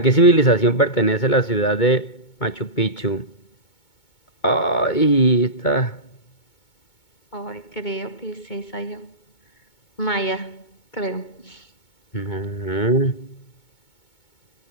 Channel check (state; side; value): late; right; 2.2 ms